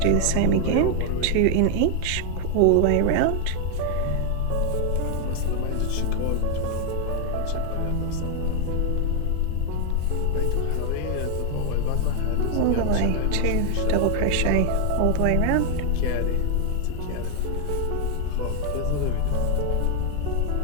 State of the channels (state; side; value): different; both; correlation 0.00